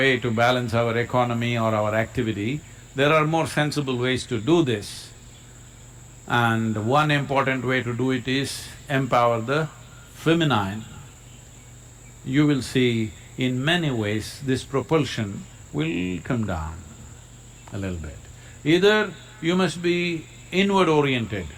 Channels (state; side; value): identical; both; correlation 1.00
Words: to balance our economy or our activity. There are more sensible ways to do this. And one important way to do it is empower the feminine. You will see in many ways this propulsion will come down a little bit. Either you must be inward oriented,